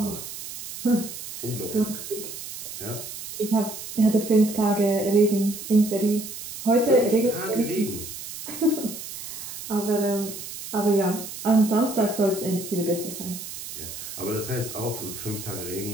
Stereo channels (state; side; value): noise; right; hiss, 9 dB below the sound